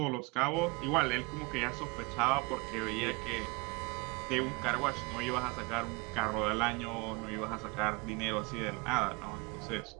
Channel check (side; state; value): left; quieter; 26.5 dB